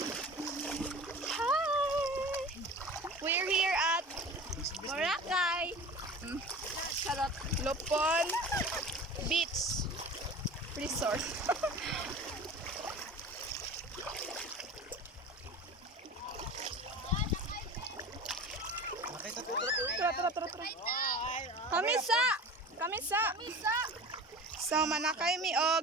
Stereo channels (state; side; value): normal; both; correlation 0.36